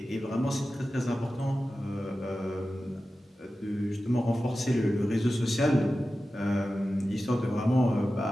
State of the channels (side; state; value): both; normal; correlation 0.94